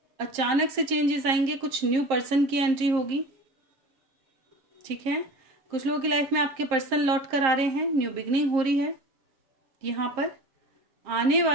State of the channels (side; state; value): left; late; 7.5 ms